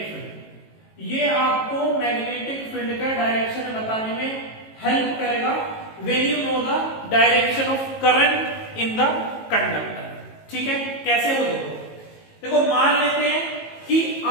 field. ये आपको मैग्नेटिक फील्ड का डायरेक्शन बताने में हेल्प करेगा when you know the direction of current in the conductor. ठीक है, कैसे हो? देखो, मान लेते हैं कि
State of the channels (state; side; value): late; right; 18 ms